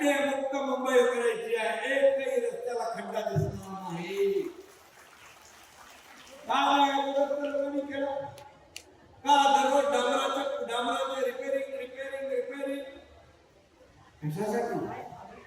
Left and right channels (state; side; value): identical; both; correlation 1.00